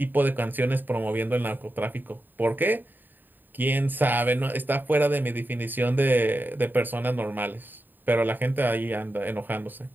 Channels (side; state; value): left; late; 0.091 ms